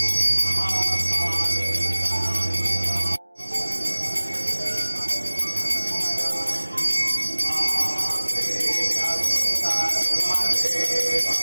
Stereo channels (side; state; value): both; inverted; correlation -1.00